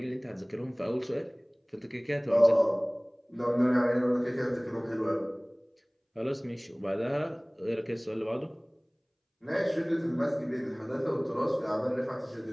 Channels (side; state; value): both; identical; correlation 1.00